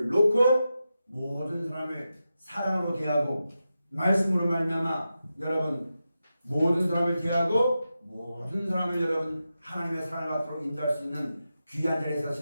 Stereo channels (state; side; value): inverted; both; correlation -0.90